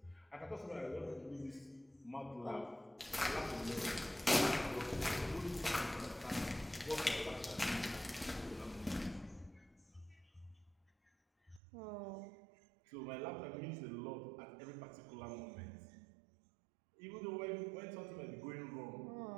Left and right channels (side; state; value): left; drops out; at 11.6 s